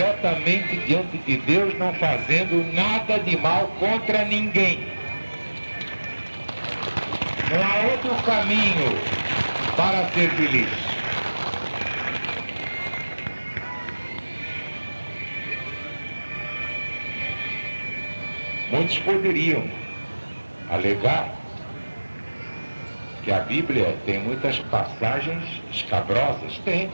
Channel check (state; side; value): inverted; both; correlation -1.00